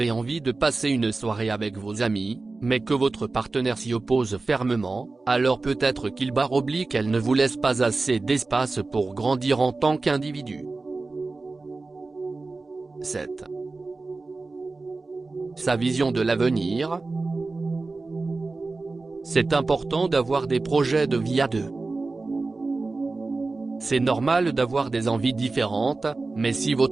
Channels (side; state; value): left; quieter; 3.6 dB